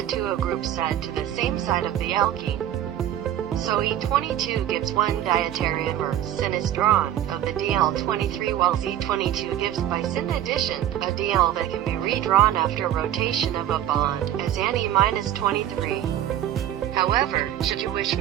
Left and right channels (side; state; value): left; quieter; 11.5 dB